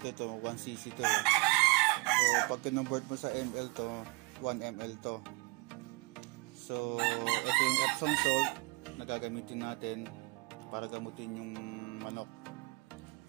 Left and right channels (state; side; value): quieter; left; 25.1 dB